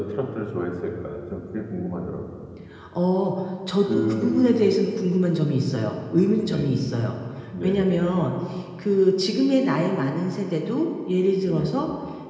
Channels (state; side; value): identical; both; correlation 1.00